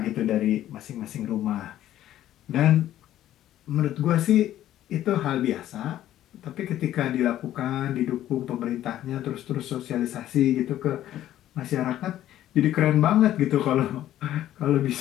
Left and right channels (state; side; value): quieter; right; 12.7 dB